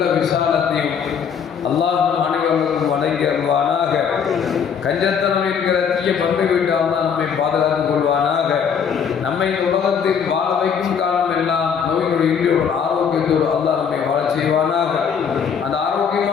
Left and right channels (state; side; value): quieter; right; 7.0 dB